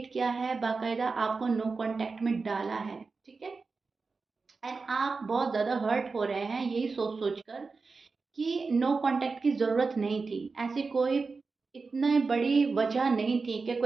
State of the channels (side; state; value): left; quieter; 4.3 dB